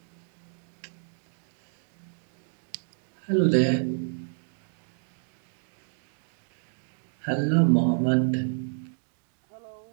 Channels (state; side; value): silent; left; digital silence